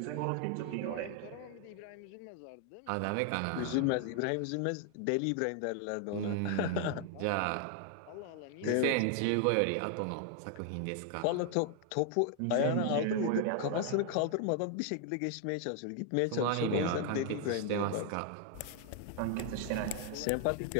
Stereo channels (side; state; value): both; different; correlation 0.00